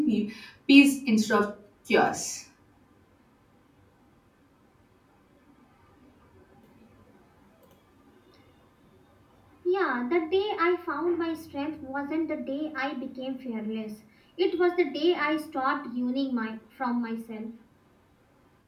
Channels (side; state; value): both; identical; correlation 1.00